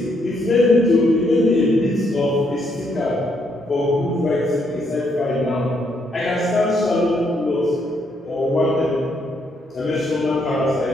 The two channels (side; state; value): both; normal; correlation 0.74